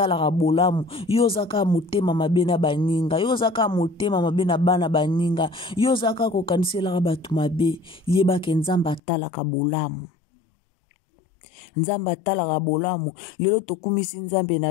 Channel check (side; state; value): right; drops out; at 9.0 s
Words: bolamu. Yo zaka motema mabe na baninga. Yo zaka motema mabe na bana baninga. Yo zaka kokanisela batu mabe. Yeba ke Nzamba talaka bolamu. Nzamba talaka bolamu. Lelo tokumisi Nzambe